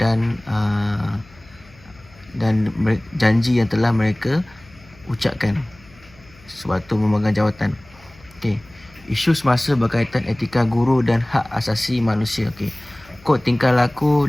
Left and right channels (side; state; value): left; noise; hum, 26 dB below the sound